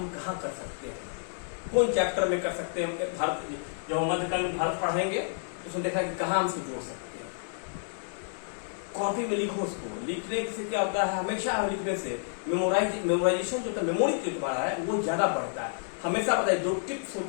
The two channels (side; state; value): right; silent; digital silence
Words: कहाँ कर सकते हैं, कौन चैप्टर में कर सकते हैं। भारत जब हम मध्यकाल में भारत पढ़ेंगे तो उसमें देखा कि कहाँ हम उसको जोड़ सकते हैं। कॉपी में लिखो उसको। लिखने से क्या होता है, हमेशा लिखने से मेमोराइजेशन जो मेमोरी जो तुम्हारा है वो ज्यादा बढ़ता है। हमेशा पता है जो टिप्स